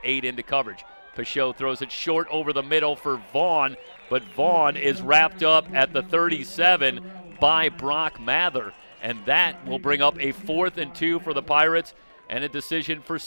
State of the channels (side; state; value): both; inverted; correlation -1.00